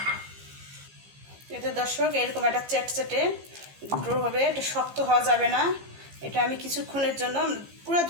এতে দর্শক এরকম একটা চ্যাটচ্যাটে ড্রো হবে, এটা শক্ত হওয়া যাবে না। এটা আমি কিছুক্ষণের জন্য, পুরো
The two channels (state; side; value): late; left; 15 ms